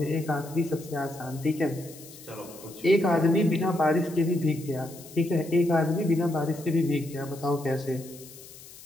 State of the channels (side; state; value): left; noise; hiss, 18 dB below the sound